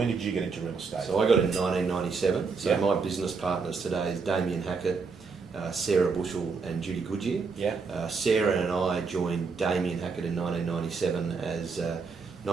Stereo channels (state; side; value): quieter; left; 4.9 dB